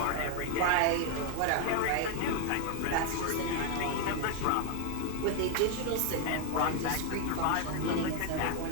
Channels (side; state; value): both; different; correlation 0.01